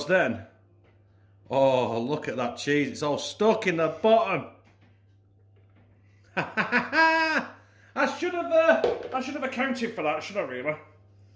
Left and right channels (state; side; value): identical; both; correlation 1.00